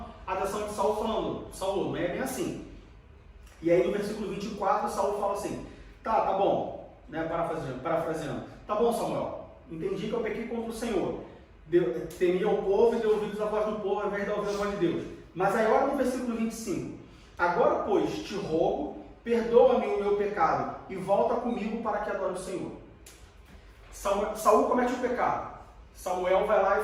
a atenção de Saul falando: Saul, não é bem assim. E aí no versículo 24, Saul fala assim: tá bom, né, parafraseando, tá bom, Samuel, entendi que eu pequei contra o Senhor. Temia o povo e deu ouvidos à voz do povo ao invés de ouvir a voz de Deus. Mas aí olha no versículo 25. Agora, pois, te rogo, perdoa-me o meu pecado e volta comigo para que adore o Senhor. Saul comete o pecado. Samuel vai lá e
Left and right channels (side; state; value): both; identical; correlation 1.00